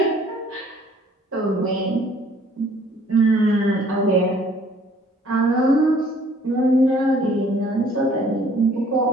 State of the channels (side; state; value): both; normal; correlation 0.57